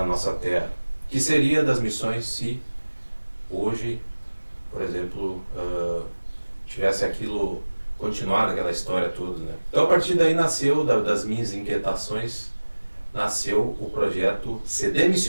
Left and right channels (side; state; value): both; inverted; correlation -1.00